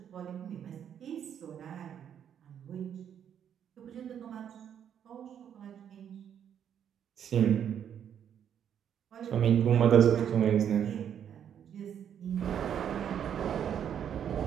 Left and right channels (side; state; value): left; quieter; 8.9 dB